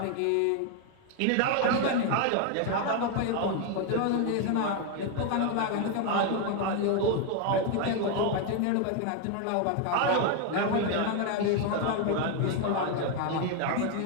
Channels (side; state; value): both; different; correlation 0.01